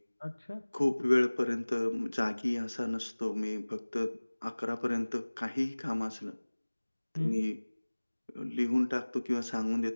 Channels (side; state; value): both; inverted; correlation -1.00